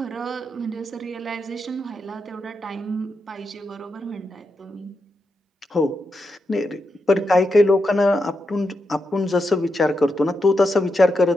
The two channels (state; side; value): normal; both; correlation 0.85